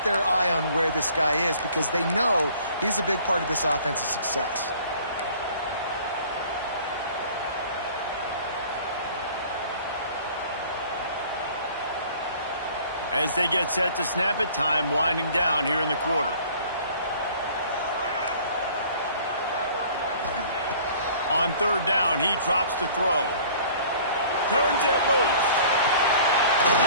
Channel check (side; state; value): both; inverted; correlation -0.51